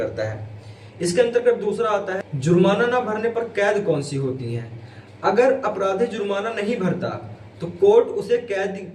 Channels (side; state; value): both; identical; correlation 1.00